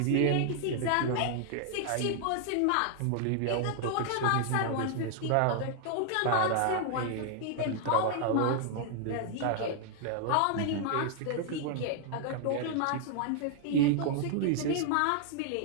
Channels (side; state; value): both; different; correlation 0.00